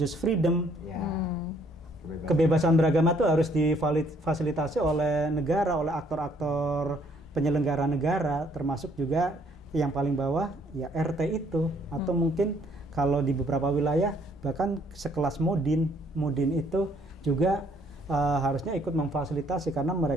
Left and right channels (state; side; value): normal; both; correlation 0.65